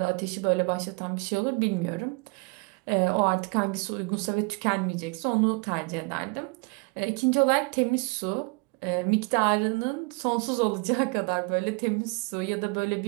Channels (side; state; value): left; quieter; 30.7 dB